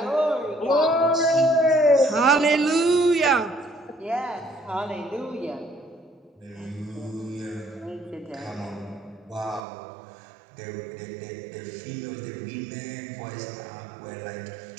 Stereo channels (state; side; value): drops out; left; at 9.7 s